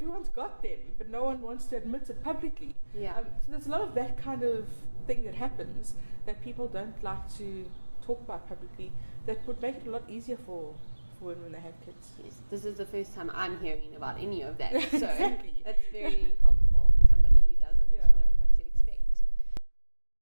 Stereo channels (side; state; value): both; inverted; correlation -1.00